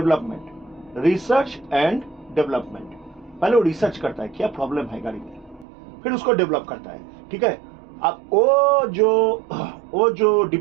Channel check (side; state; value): left; drops out; at 5.7 s